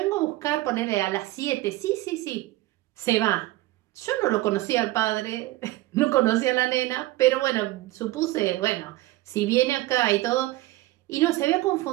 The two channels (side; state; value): left; quieter; 17.8 dB